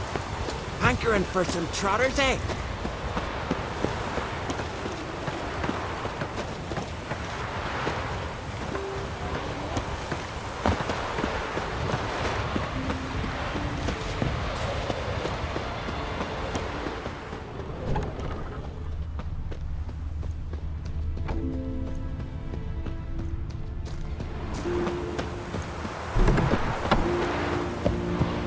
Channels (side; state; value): both; identical; correlation 1.00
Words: Hankering for some trotters, eh?